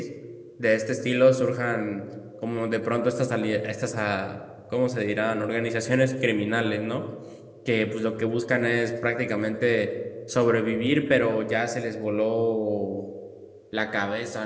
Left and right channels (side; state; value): both; identical; correlation 1.00